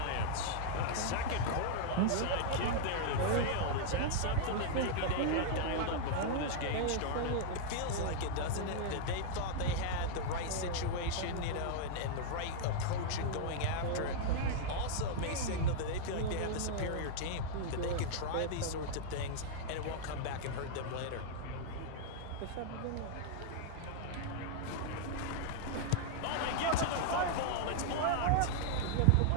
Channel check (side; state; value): both; different; correlation -0.01